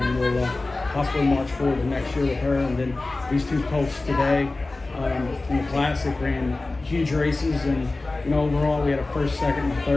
we'll possibly march forward to next year with her. And then these two colts today in the Classic ran huge races, and overall we had a first, second, and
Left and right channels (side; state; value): right; quieter; 3.2 dB